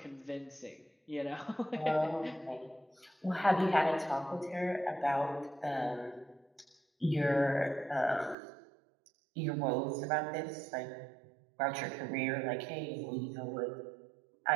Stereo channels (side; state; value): left; drops out; at 8.3 s